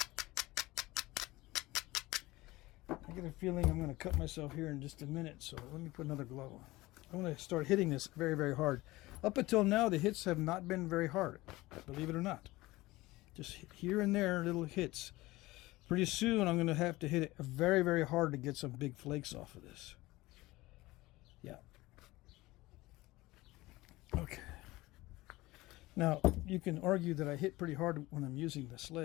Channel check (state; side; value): quieter; right; 19.5 dB